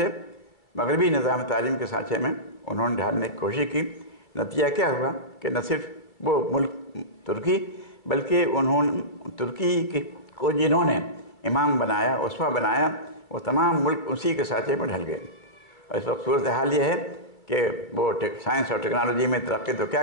مغربی نظام تعلیم کے سانچے میں انہوں نے ڈھالنے کی کوشش کی. نتیجہ کیا ہوا کہ نہ صرف وہ ملک ترکی بلکہ انہوں نے ترکی کو جنہوں نے امام بنایا، اسوہ بنایا، وہ تمام ملک اسی کے سانچے میں ڈھل گئے. اور اس وقت صورتحال یہ ہے کہ وہ سائنس اور ٹیکنالوجی میں ترقی تو کیا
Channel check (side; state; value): right; late; 2.3 ms